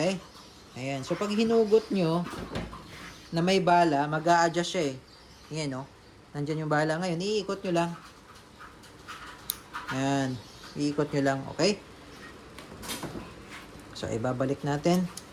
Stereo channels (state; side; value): identical; both; correlation 1.00